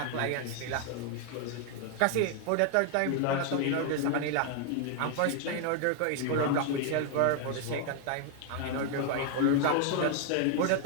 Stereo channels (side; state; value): both; different; correlation 0.00